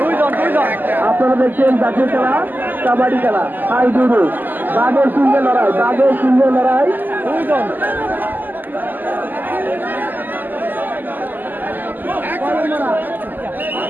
আপনারা দেখছেন জাতীয় খেলা কাবাডি খেলা হাই জুডো বাঘের সঙ্গে লড়াই বাঘের সঙ্গে লড়াই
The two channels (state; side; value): late; left; 0.087 ms